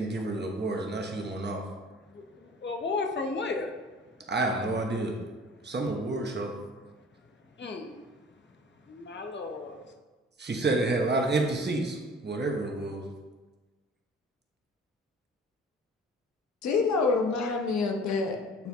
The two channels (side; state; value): both; normal; correlation 0.46